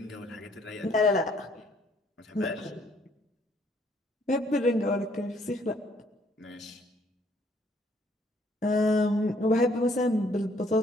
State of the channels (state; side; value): normal; both; correlation 0.64